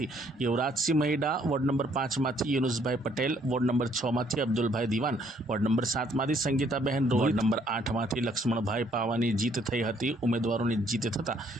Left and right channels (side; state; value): both; normal; correlation 0.66